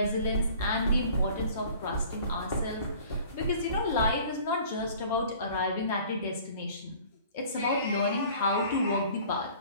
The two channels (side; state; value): both; inverted; correlation -0.49